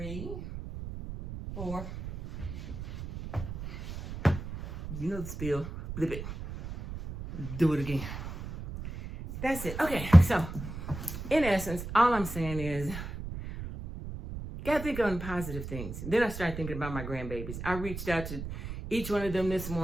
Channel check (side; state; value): right; noise; rumble, 9 dB below the sound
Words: 4. You know the spiel. Flip it. Do it again. That's it. Okay, so in essence, all I'm saying is, gotta think on positive things. Then I started thinking about my grandbabies. I reached out to each one of them this